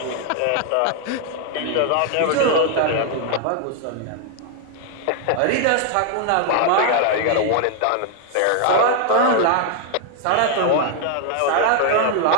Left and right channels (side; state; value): both; different; correlation 0.00